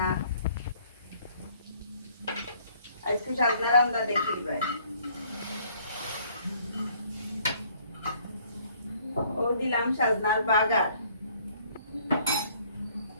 আজকে সাজনা রান্দা দেখি ভাই ও দিলাম সাজনার বাগার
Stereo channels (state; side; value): inverted; both; correlation -0.61